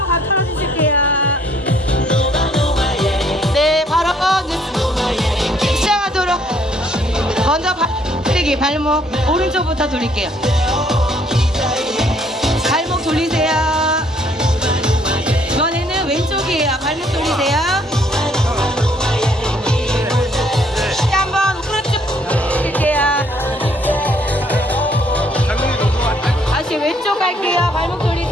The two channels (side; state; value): both; normal; correlation 0.64